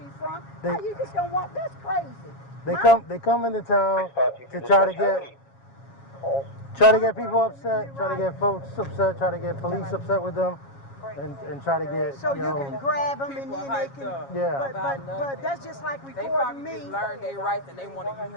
from? They- How you just don't want? That's crazy. They Huh? come into town to try to get people upset, try to get folks upset, try to get police upset with them. and try to get, So you can grab them and People then they hyped can. up Yeah. But that's just like They recording probably me. just learned their rights and they want to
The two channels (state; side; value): late; right; 7.3 ms